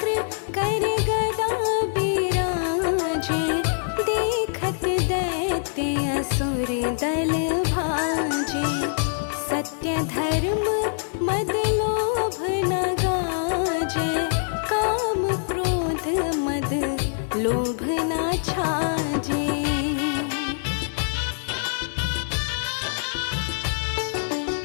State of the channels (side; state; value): right; silent; 62 dB below the other